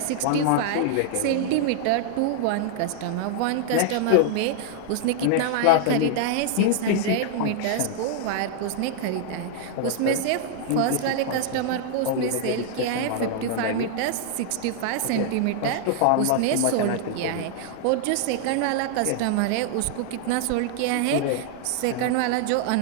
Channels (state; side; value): different; both; correlation -0.01